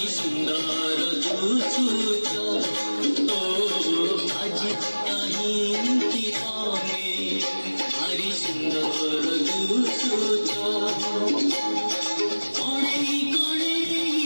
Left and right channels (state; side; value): inverted; both; correlation -1.00